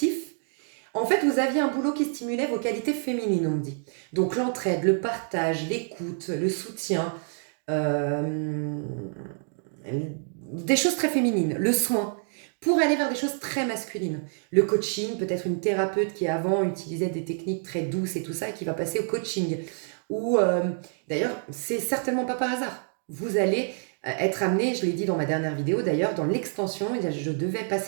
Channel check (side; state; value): left; silent; 57 dB below the other